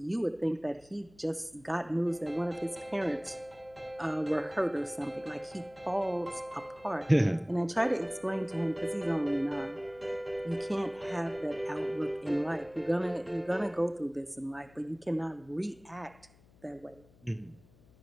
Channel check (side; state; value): left; noise; hum, 27 dB below the sound